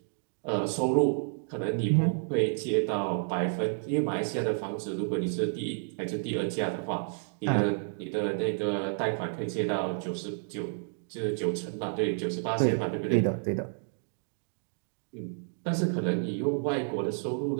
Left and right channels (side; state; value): left; silent; digital silence